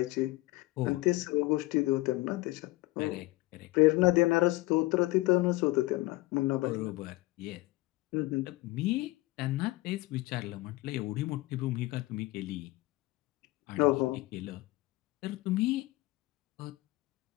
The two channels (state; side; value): quieter; right; 20.3 dB